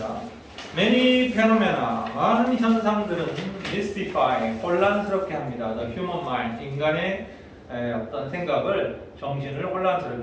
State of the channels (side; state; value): both; identical; correlation 1.00